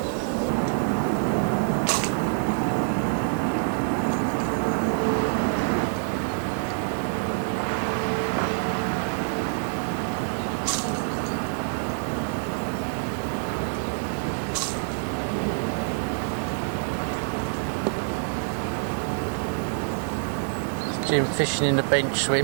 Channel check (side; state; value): left; silent; digital silence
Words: Jim fishing in the bench